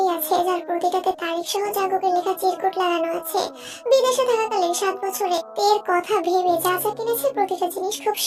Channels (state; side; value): identical; both; correlation 1.00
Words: আছে যার প্রতিটাতে তারিখ সহ জাঙ্কুকের লেখা চিরকুট লাগানো আছে। বিদেশে থাকাকালীন 7 বছরে তের কথা ভেবে যা যা কিনেছে প্রতিটা জিনিস খুব